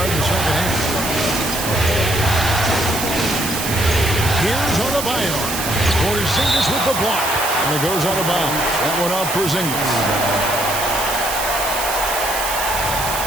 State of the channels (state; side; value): noise; right; hiss, 4 dB below the sound